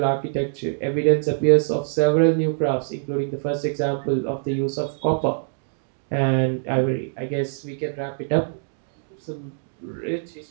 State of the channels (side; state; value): left; silent; digital silence